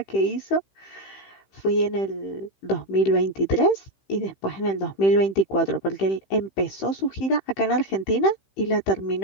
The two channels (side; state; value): right; late; 15 ms